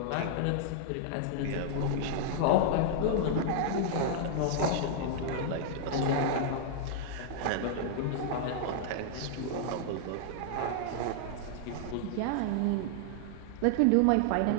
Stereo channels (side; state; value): both; different; correlation -0.01